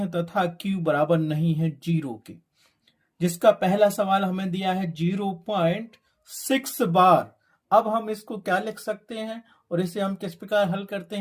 तथा Q बराबर नहीं है 0 के। जिसका पहला सवाल हमें दिया है 0.6 बार। अब हम इसको क्या लिख सकते हैं और इसे हम किस प्रकार हल करते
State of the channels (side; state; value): both; identical; correlation 1.00